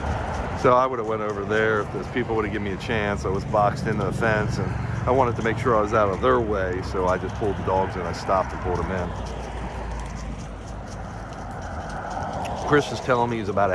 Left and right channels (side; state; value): both; identical; correlation 1.00